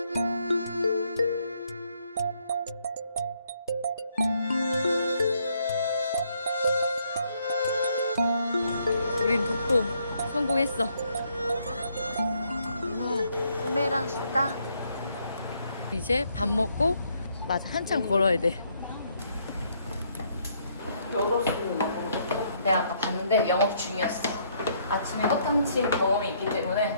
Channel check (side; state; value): both; inverted; correlation -0.70